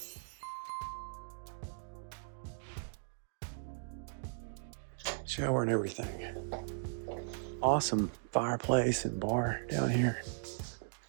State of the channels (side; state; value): left; silent; digital silence